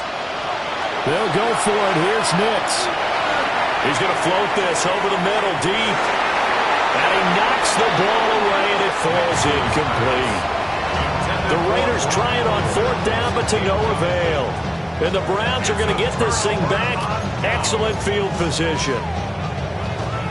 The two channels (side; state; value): both; identical; correlation 1.00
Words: They'll go for it. Here's Nix. He's going to float this over the middle deep. And he knocks the ball away, and it falls incomplete. The Raiders try it on 4th down, but to no avail. And the Browns are going to get this thing back. Excellent field position.